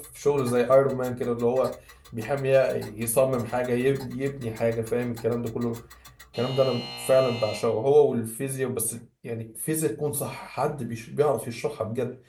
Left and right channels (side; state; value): both; identical; correlation 1.00